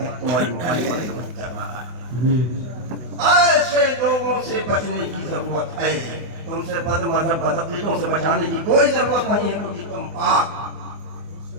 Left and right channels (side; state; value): left; late; 24 ms